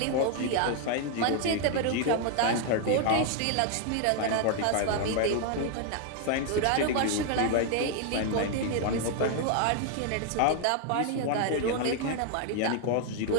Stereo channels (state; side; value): different; both; correlation 0.00